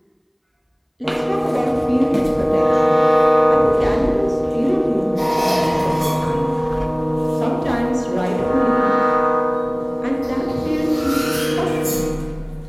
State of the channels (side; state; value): both; identical; correlation 1.00